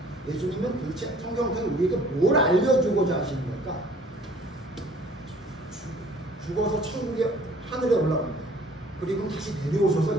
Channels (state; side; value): normal; both; correlation 0.54